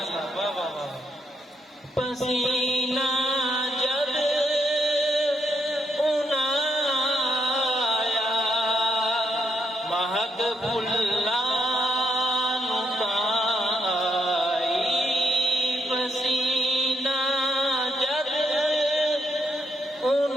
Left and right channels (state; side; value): normal; both; correlation 0.78